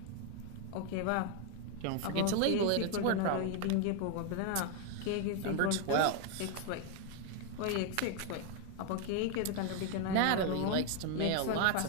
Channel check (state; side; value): different; both; correlation 0.01